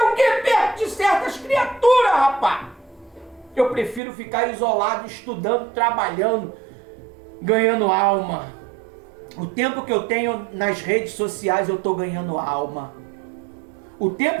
que perto de certas criaturas, rapaz? Eu prefiro ficar isolado, estudando, trabalhando, ganhando alma. O tempo que eu tenho nas redes sociais, eu estou ganhando alma. O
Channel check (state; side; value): drops out; left; at 4.0 s